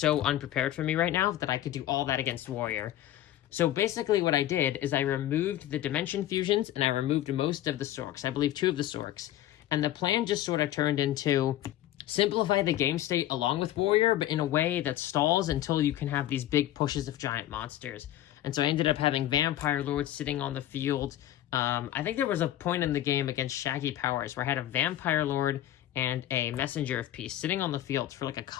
unprepared for me right now that I could do all that against Warrior. So basically what I did is I removed the Dimension Fusions and I removed most of the Sorks, I believe 2 of the Sorks, and the plan just sort of turned into simplify the game state along with Warrior, but in a way that stalls until you can have these big pushes of giant monsters. And so I ended up having Vampire Lord sitting on the field. I think there was a point in the game against Shaggy Powers where I had a Vampire Lord and a Messenger of Peace sitting on the field for like a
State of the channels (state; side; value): quieter; right; 13.3 dB